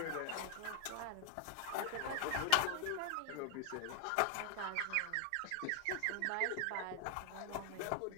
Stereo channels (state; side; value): different; both; correlation 0.00